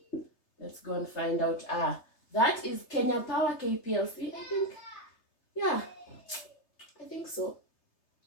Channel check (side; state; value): right; late; 3.3 ms